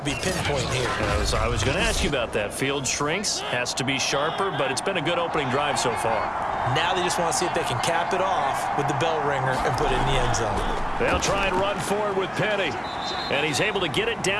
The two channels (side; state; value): both; identical; correlation 1.00